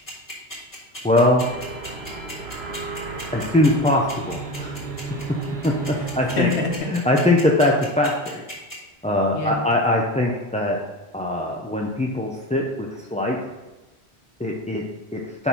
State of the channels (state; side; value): normal; both; correlation 0.29